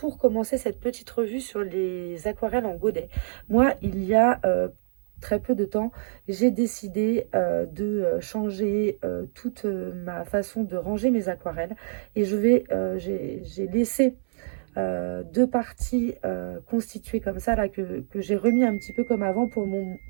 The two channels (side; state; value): left; silent; 61 dB below the other